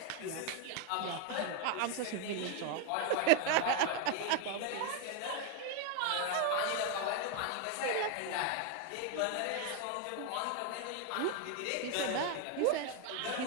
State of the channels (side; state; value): both; different; correlation 0.01